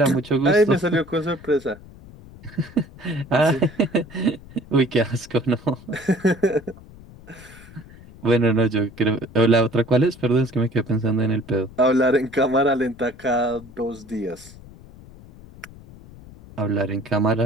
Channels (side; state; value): left; noise; rumble, 20 dB below the sound